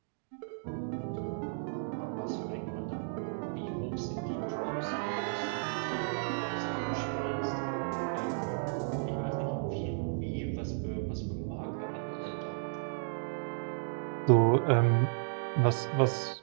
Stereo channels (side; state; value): left; silent; digital silence